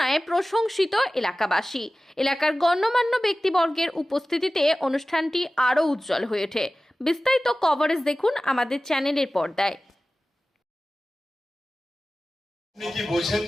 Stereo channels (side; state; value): both; normal; correlation 0.96